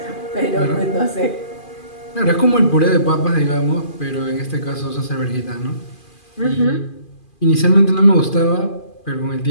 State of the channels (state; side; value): late; right; 2.4 ms